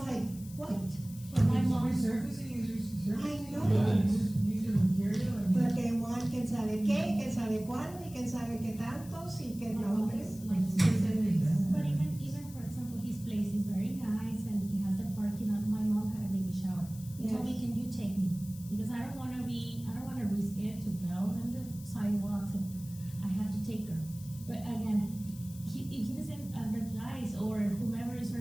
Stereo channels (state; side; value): noise; left; hiss, 19 dB below the sound